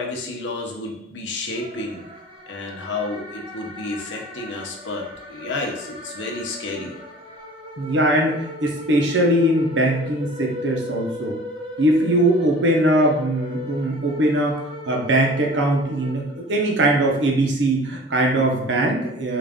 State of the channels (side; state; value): both; normal; correlation 0.44